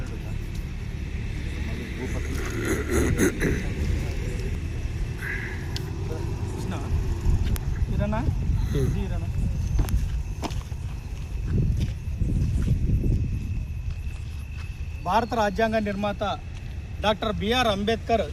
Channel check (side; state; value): both; identical; correlation 1.00